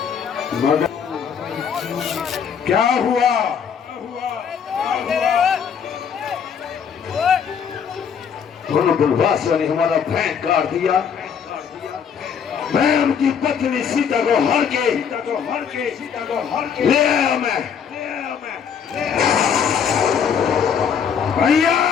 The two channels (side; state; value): right; quieter; 7.2 dB